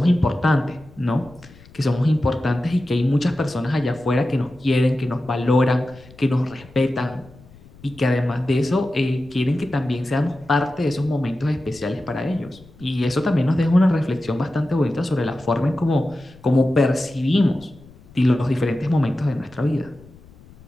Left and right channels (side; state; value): left; noise; rumble, 23 dB below the sound